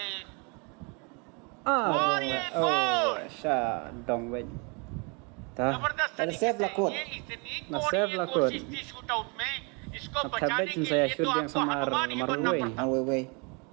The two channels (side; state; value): left; quieter; 32.6 dB